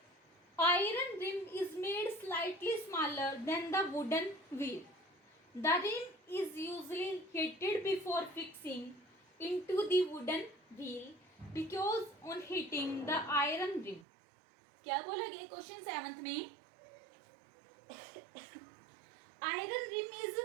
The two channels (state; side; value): drops out; left; at 14.1 s